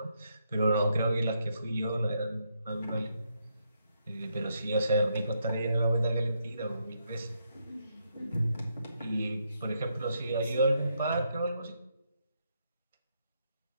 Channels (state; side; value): inverted; both; correlation -0.78